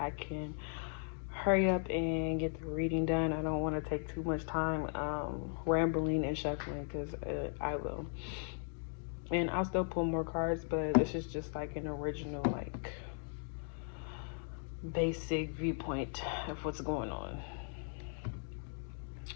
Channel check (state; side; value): silent; right; 53 dB below the other